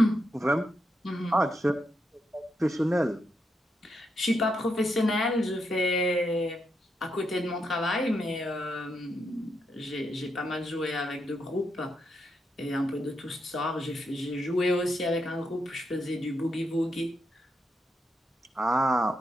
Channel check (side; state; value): both; normal; correlation 0.82